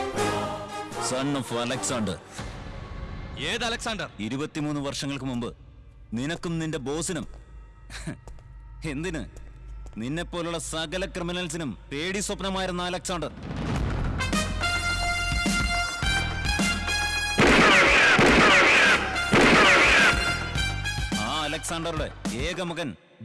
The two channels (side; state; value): both; identical; correlation 1.00